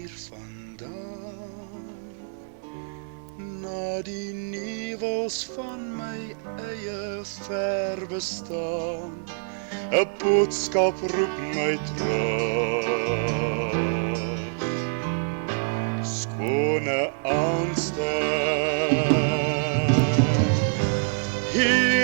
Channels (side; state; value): left; silent; 61 dB below the other